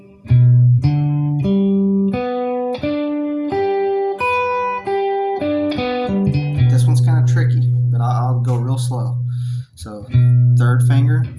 This one's kind of tricky, but I'll go real slow. So third finger,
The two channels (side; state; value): both; identical; correlation 1.00